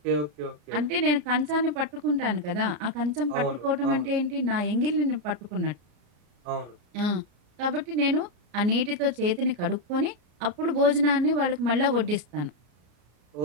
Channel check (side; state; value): left; late; 34 ms